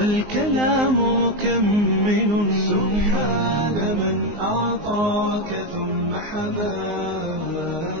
مكمل سبحان من أعطاك ثم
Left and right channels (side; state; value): left; late; 19 ms